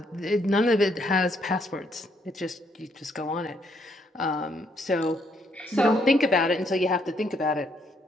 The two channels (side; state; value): both; normal; correlation 0.72